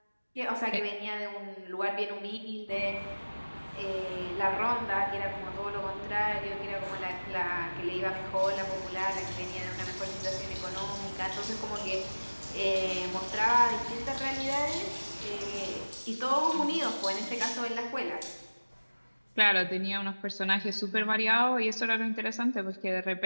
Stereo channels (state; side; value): inverted; both; correlation -1.00